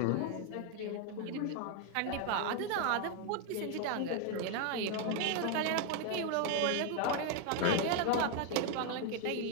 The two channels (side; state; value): both; different; correlation 0.01